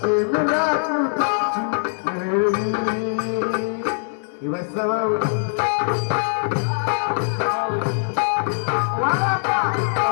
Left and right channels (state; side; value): silent; right; 57 dB below the other